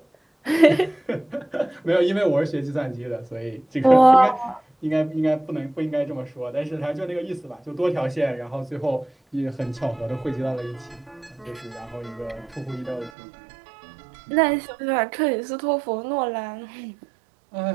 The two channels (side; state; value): left; drops out; at 13.1 s